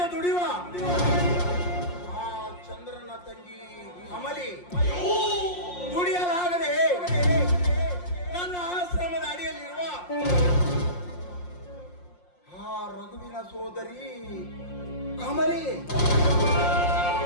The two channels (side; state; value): right; late; 5.6 ms